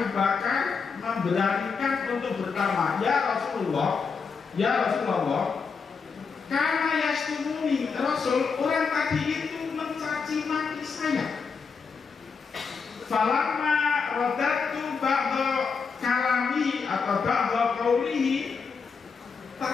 Bakar memberanikan untuk bertanya, ya Rasulullah, karena yastumuni Rasul, orang tadi itu mencaci maki saya. Falamma radatu ba'da kalami atau ba'da qaulihi,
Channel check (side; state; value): right; quieter; 5.4 dB